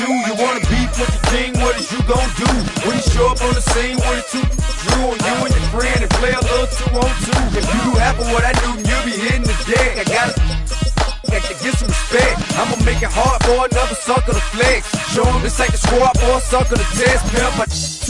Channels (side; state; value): both; identical; correlation 1.00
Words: You wanna beef with the king? What is you gon' do when you show up on the scene with a two Drew on you and your friend and play a little 2 on 2? If you do half of what I do, then you'll be hitting the deck. I gotta get some respect. I'ma make it hard for another sucker to flex. Show him this ain't the squad or a sucker to test. Pimp, but